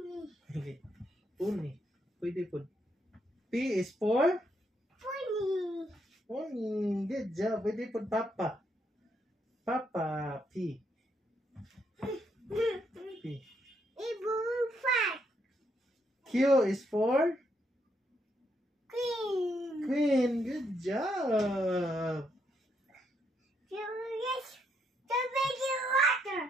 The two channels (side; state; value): both; normal; correlation 0.76